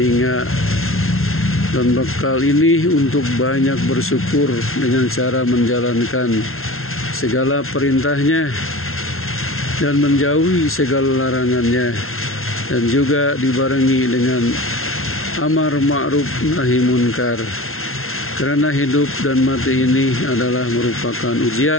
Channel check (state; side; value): late; right; 0.62 ms